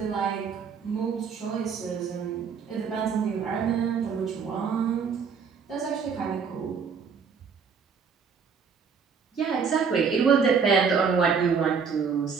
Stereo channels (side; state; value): left; quieter; 6.0 dB